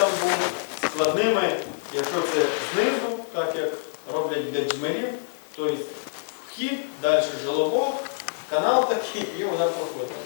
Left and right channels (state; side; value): silent; right; 59 dB below the other